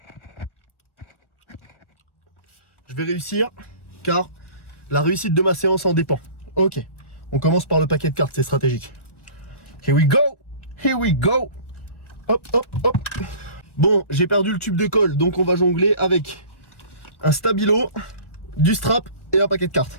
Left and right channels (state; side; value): late; right; 1.5 ms